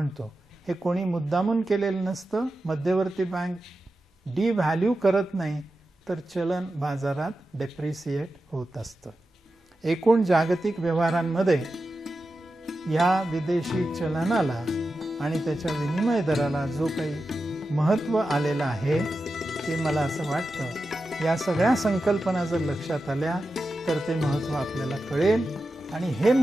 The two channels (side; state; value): both; normal; correlation 0.91